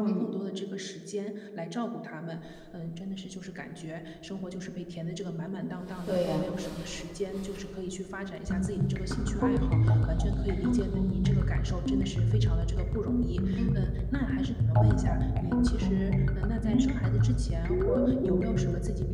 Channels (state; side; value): identical; both; correlation 1.00